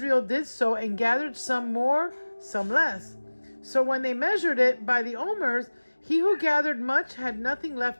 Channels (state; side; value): inverted; both; correlation -1.00